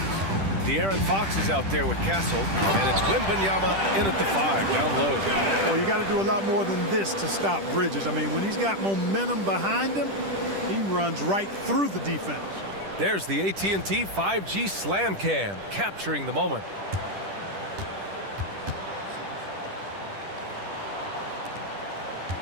De'Aaron Fox is out there with Castle, and it's Wembanyama in at the 5, down low. Well, you got to do a lot more than this to stop Bridges. I mean, when he's got momentum behind him, he runs right through the defense. There's the AT&T 5G Slam Cam, capturing the moment.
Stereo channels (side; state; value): left; late; 10 ms